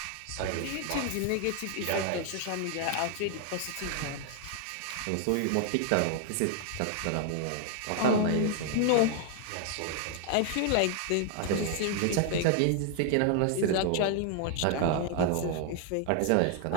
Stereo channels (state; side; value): different; both; correlation 0.00